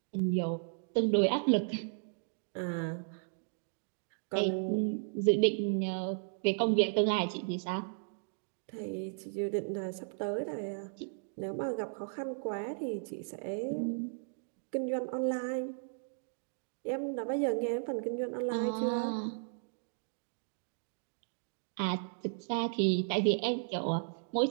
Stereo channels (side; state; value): left; silent; digital silence